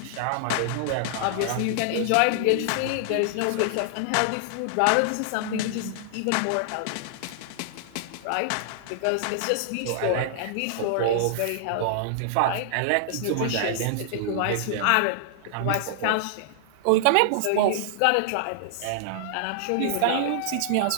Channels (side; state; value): both; different; correlation -0.01